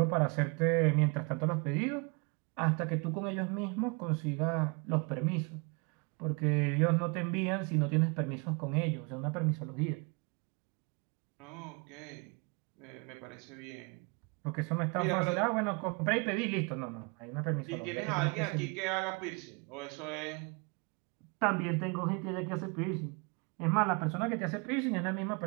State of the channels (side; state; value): left; quieter; 32.0 dB